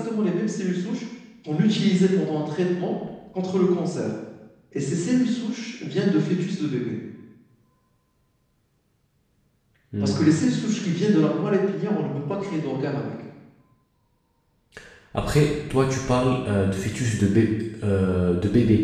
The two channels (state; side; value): identical; both; correlation 1.00